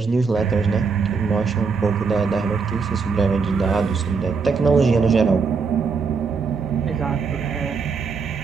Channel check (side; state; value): left; quieter; 5.1 dB